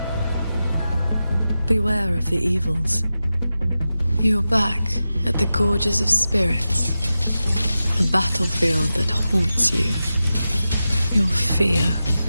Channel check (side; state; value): both; inverted; correlation -0.93